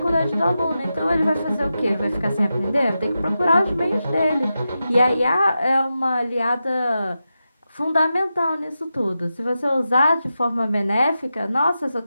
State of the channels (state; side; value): inverted; both; correlation -0.90